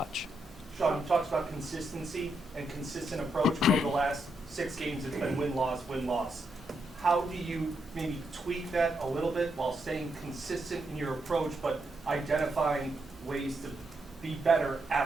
Sean, you talked about consistency and consistent approach. Over the last 6 games, it's been win-loss, win-loss. How do you maybe tweak that a little bit while staying consistent in your approach, but identifying ways to be better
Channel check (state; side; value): normal; both; correlation 0.81